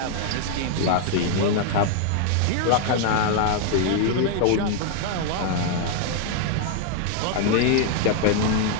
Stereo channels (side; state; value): both; different; correlation 0.00